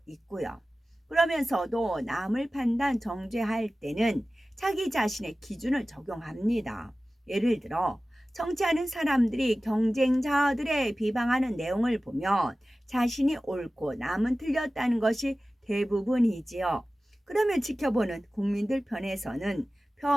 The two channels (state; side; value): normal; both; correlation 0.96